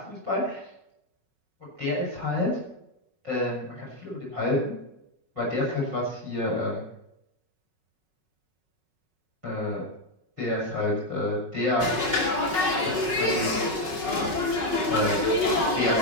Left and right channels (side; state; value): left; late; 5.4 ms